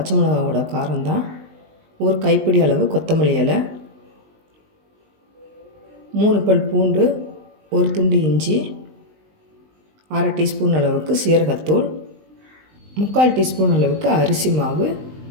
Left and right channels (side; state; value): left; late; 19 ms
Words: மிளகாவோட காரம்தான். ஒரு கைப்பிடி அளவு கொத்தமல்லி இலை, 3 பல் பூண்டு, ஒரு துண்டு இஞ்சி, 1/2 டீஸ்பூன் அளவுக்கு சீரகத்தூள், 3/4 டீஸ்பூன் அளவுக்கு அரிசி மாவு,